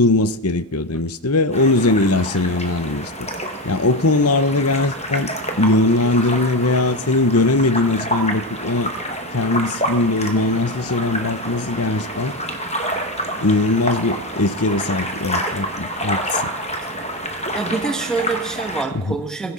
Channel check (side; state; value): both; normal; correlation 0.16